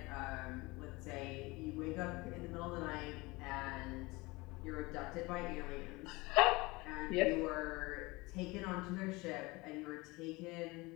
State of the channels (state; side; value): quieter; right; 23.3 dB